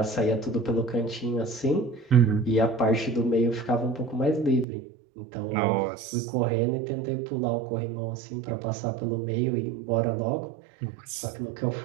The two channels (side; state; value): left; drops out; at 4.7 s